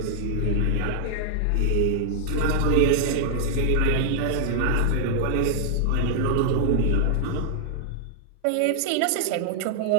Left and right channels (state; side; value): different; both; correlation -0.01